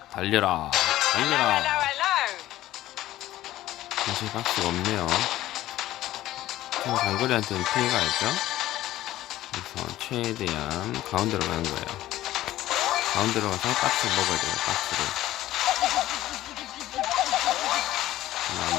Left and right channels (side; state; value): right; quieter; 14.9 dB